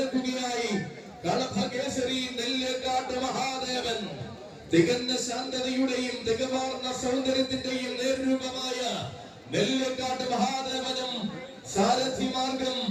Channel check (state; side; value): identical; both; correlation 1.00